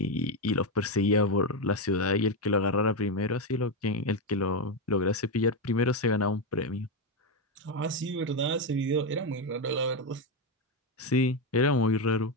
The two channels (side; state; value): both; normal; correlation 0.08